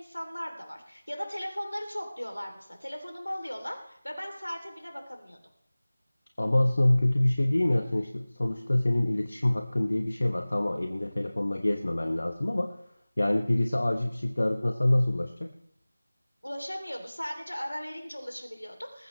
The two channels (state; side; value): inverted; both; correlation -1.00